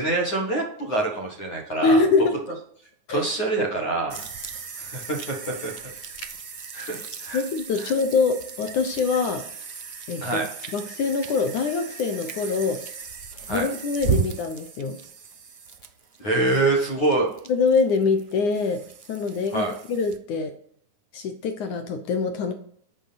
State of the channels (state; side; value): late; right; 9.4 ms